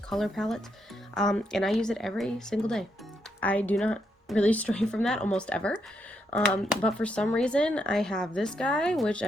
palettes, and I use it every single day. I do not really stray from that almost ever. But for some reason, I have this guy, which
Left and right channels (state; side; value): normal; both; correlation 0.79